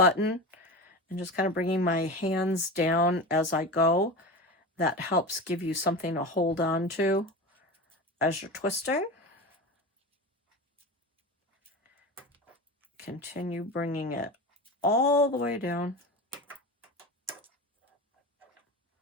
and just kind of bringing my hands down as I go. That helps give you something to hold on to as you're twisting. Continue bringing it all the way down.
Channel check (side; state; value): both; normal; correlation 0.27